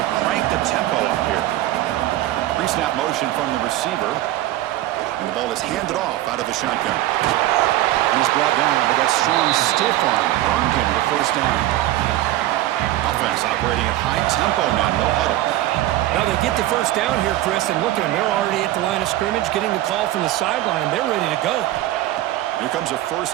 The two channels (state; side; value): quieter; left; 15.1 dB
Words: crank the tempo up here. Pre-snap motion from the receiver. And the ball is handed off out of the shotgun. And he's brought down, but that strong stiff arm earned him the first down. Offense operating at high tempo now, no huddle. Now they get the first down here, Chris, and look at them. They're already at the line of scrimmage, getting the call from the sideline. They're ready to go. Here comes a first